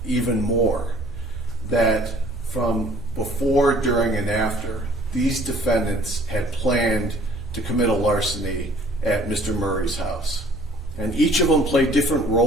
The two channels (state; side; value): normal; both; correlation 0.55